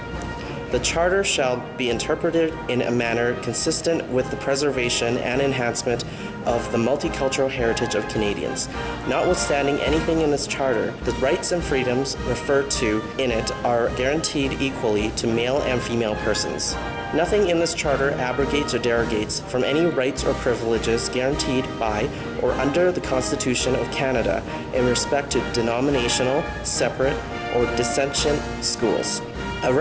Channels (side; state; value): both; identical; correlation 1.00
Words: The Charter shall be interpreted in a manner consistent with the preservation and enhancement of the multicultural heritage of Canadians. Notwithstanding anything in this Charter, the rights and freedoms referred to in it are guaranteed equally to male and female persons. Nothing in this Charter abrogates or derogates from any rights or privileges guaranteed by or under the Constitution of Canada in respect to denominational, separate, or dissentient schools. A